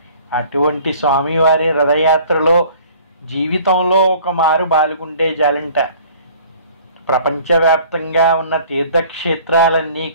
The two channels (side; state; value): both; inverted; correlation -0.52